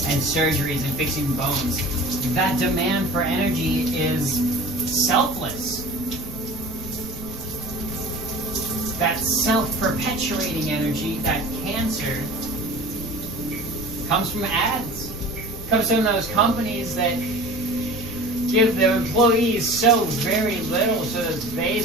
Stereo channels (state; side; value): noise; right; rumble, 14 dB below the sound